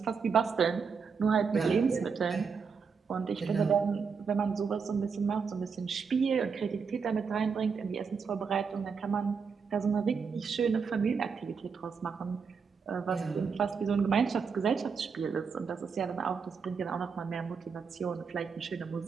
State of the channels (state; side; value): quieter; left; 5.7 dB